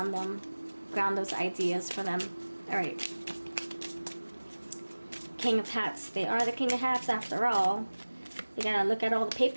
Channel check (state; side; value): inverted; both; correlation -1.00